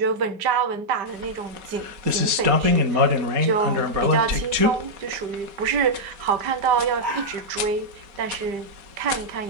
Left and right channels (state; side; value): late; left; 4.3 ms